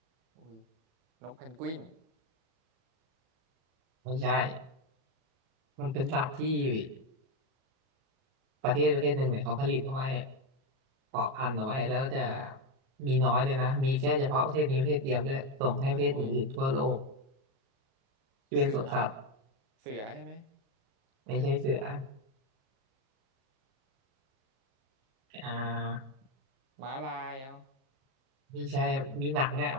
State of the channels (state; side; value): late; left; 37 ms